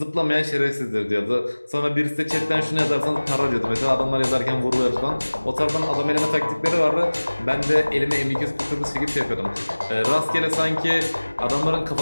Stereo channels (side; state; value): both; inverted; correlation -1.00